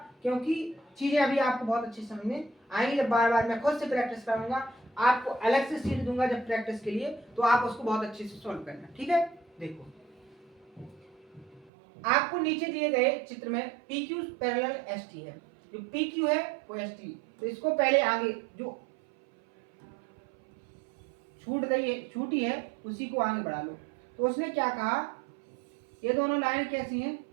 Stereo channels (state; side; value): drops out; left; at 11.7 s